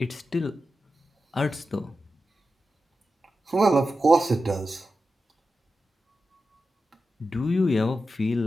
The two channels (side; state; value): both; normal; correlation 0.91